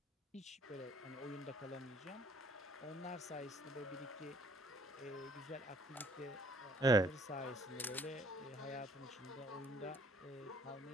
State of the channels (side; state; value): both; normal; correlation 0.60